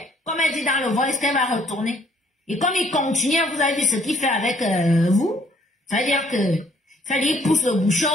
comme elle dit dans le voice qu'elle va retourner. Et comme il continue, vous avez vu ce qu'il fait avec vous, c'est-à-dire que il pousse le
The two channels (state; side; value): normal; both; correlation 0.63